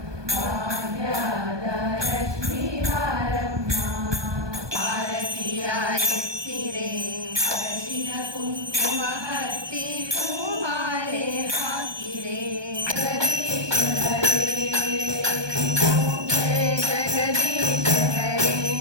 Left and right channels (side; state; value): left; late; 1.2 ms